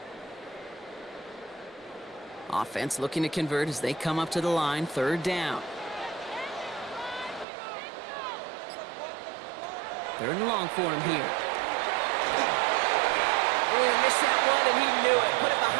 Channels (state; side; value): drops out; left; at 7.5 s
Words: Offense looking to convert as they come up to the line, third down. Third and long for him here. Oh, missed that one, and he knew it. Put it